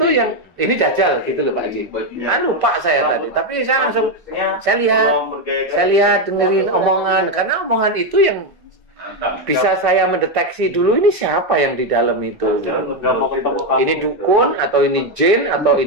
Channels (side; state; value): both; normal; correlation 0.06